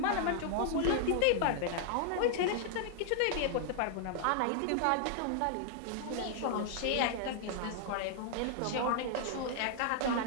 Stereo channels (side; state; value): both; different; correlation 0.00